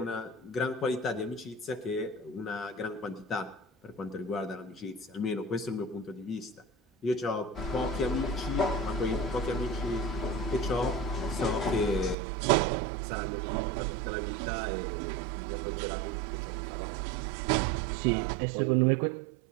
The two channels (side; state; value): left; drops out; at 12.2 s